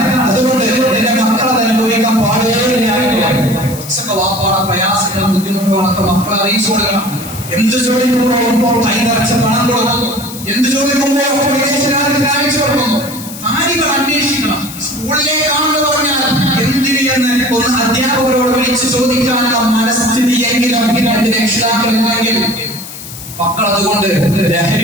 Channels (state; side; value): noise; left; hiss, 13 dB below the sound